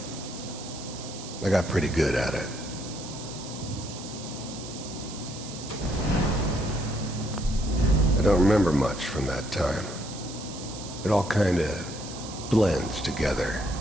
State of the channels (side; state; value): right; noise; hiss, 12 dB below the sound